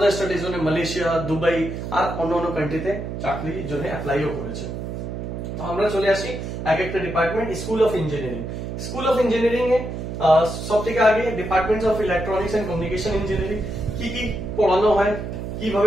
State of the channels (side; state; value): right; noise; hum, 6 dB below the sound